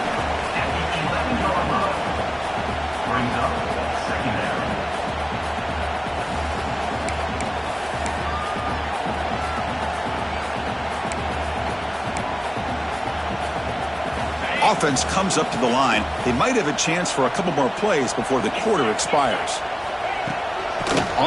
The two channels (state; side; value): identical; both; correlation 1.00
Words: Offense comes up to the line. They might have a chance for a couple more plays before the quarter expires.